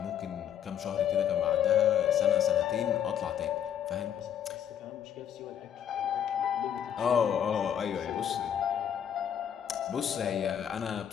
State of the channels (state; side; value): quieter; right; 9.3 dB